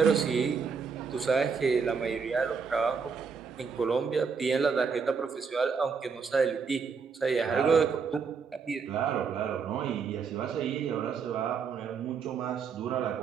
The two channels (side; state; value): left; quieter; 5.6 dB